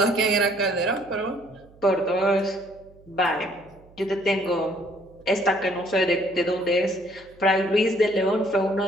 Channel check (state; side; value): noise; right; hum, 26 dB below the sound